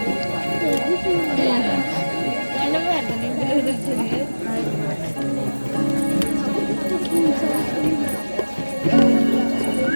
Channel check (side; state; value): both; inverted; correlation -1.00